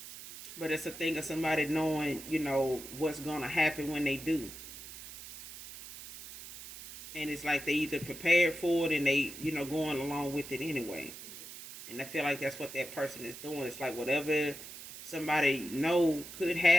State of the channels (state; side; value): noise; right; hiss, 13 dB below the sound